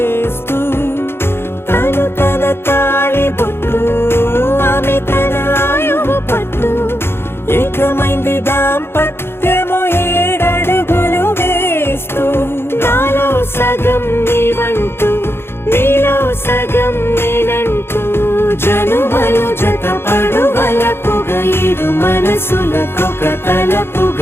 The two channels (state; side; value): late; right; 0.11 ms